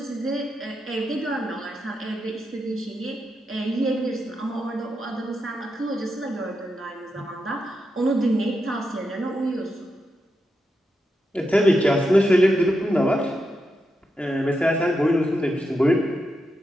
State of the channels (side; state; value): both; normal; correlation 0.86